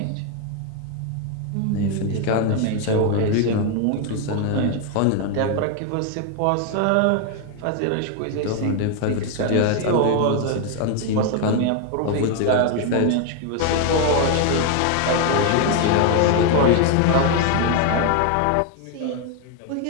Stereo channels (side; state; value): both; different; correlation 0.01